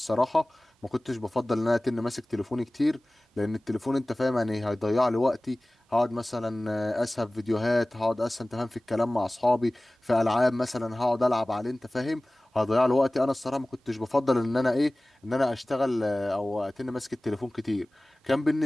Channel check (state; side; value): normal; both; correlation 0.98